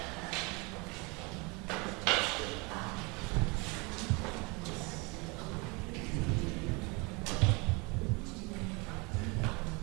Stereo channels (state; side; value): quieter; left; 28.4 dB